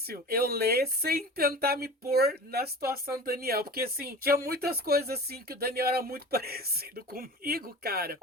eu ler sem tentar me pôr na situação do Daniel, porque assim, tinha muitas coisas assim que o Daniel era muito parecido comigo, cara.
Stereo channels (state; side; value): normal; both; correlation 0.36